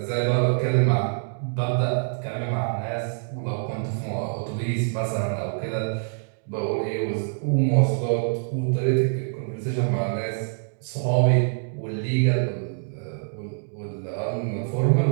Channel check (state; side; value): silent; left; digital silence